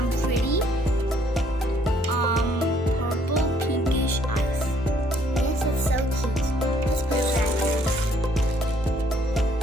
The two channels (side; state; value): both; normal; correlation 0.65